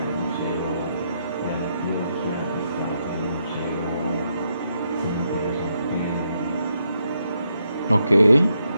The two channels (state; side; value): inverted; both; correlation -0.79